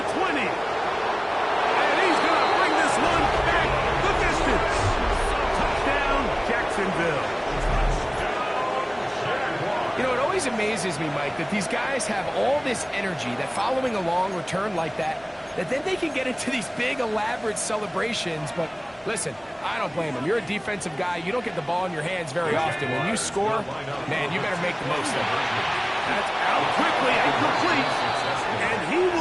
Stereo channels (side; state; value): both; identical; correlation 1.00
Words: 20. And he's going to bring this one back the distance. Touchdown, Jacksonville. You know, it always amazes me, Mike, that these guys have all this energy, that following a long return like that then they can get into these big, elaborate celebrations. But listen, I don't blame them. You're a defensive guy. You don't get the ball in your hands very often. When you score, man, you better make the most of it. That's out quickly and complete. And he